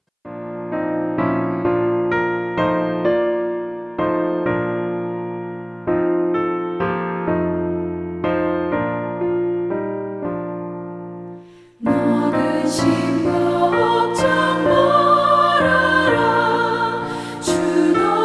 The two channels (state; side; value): identical; both; correlation 1.00